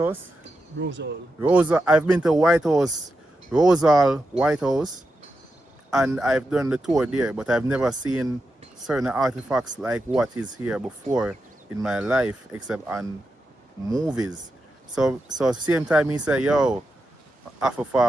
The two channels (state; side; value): normal; both; correlation 0.88